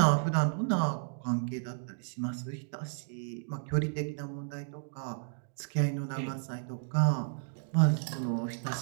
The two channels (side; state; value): left; silent; digital silence